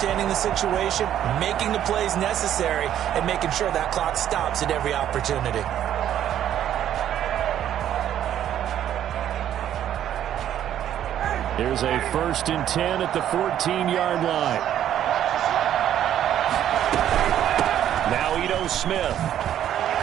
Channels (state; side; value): quieter; left; 10.9 dB